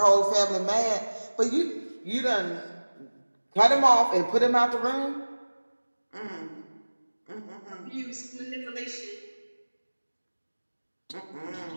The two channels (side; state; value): both; inverted; correlation -1.00